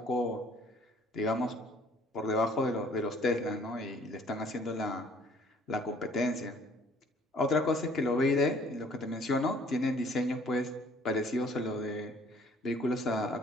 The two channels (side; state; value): both; normal; correlation 0.58